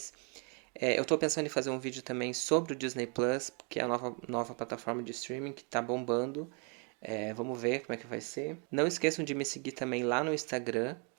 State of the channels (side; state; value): left; quieter; 36.8 dB